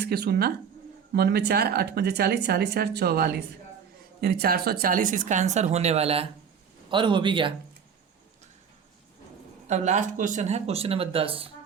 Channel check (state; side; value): quieter; left; 7.1 dB